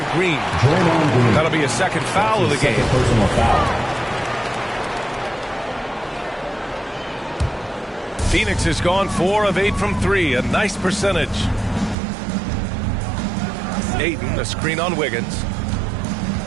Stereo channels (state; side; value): drops out; left; at 12.0 s